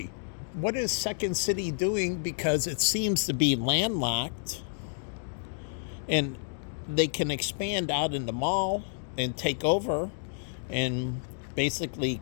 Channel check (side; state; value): right; silent; digital silence